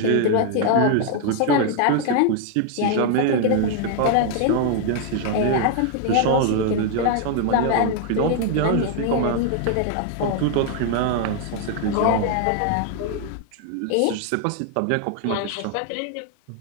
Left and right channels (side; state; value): both; different; correlation 0.00